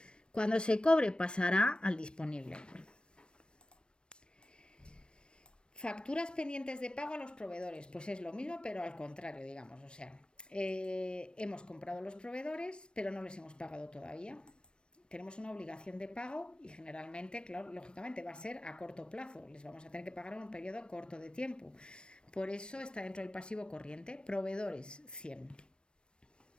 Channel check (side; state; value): right; late; 0.055 ms